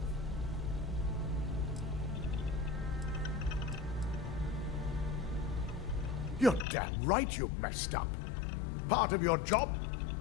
You're damn right you messed up. Part of your job?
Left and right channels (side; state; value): right; drops out; at 6.7 s